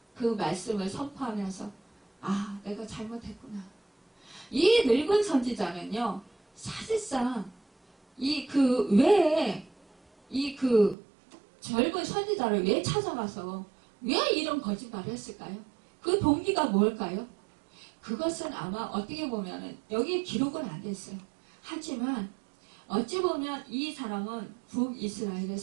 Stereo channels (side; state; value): left; drops out; at 11.0 s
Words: 그 말씀을 선포하면서 내가 잘못했구나. 이 늙은 선지자는요, 사실상 젊은 선지자를 왜 찾아가서 왜 이런 거짓말을 했을까요? 그 동기가 뭘까요? 그것은 아마 어떻게 보면은 여기 기록은 안 됐어요. 하지만 어찌 보면 이 사람은 북이스라엘에